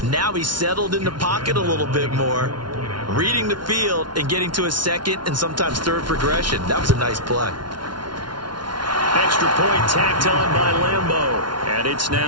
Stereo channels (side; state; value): left; late; 0.71 ms